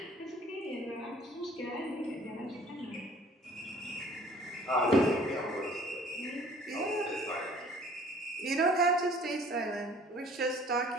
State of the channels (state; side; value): normal; both; correlation 0.53